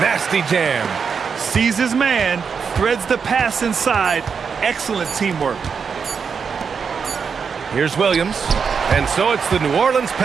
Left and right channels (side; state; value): left; quieter; 6.1 dB